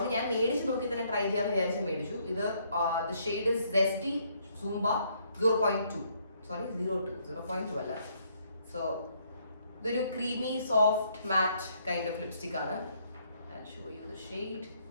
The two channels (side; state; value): both; inverted; correlation -0.69